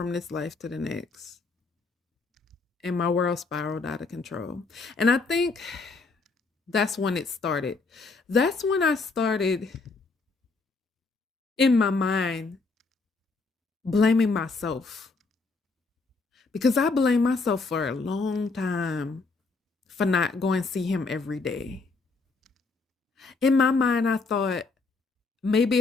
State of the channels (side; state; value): right; quieter; 4.0 dB